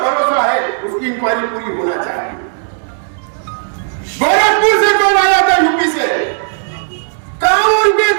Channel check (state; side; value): silent; left; digital silence